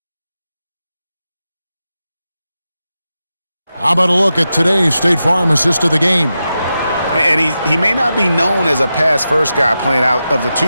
How about a look at today's State Farm assist of the game? And he may not be known as a pass-first guy playing out of the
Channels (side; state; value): both; inverted; correlation -0.90